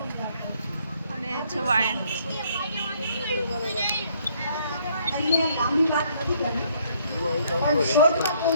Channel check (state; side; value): inverted; both; correlation -0.66